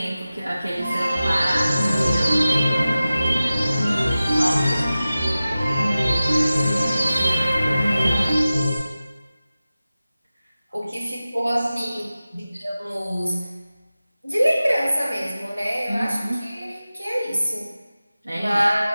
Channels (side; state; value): both; inverted; correlation -0.95